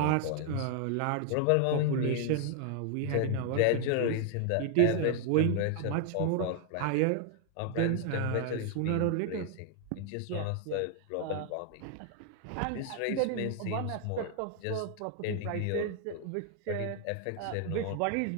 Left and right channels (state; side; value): different; both; correlation 0.00